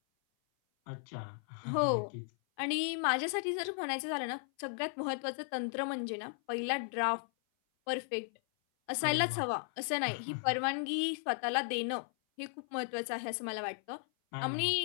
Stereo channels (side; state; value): right; silent; 54 dB below the other